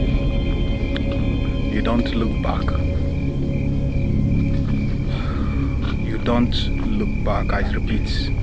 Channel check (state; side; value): identical; both; correlation 1.00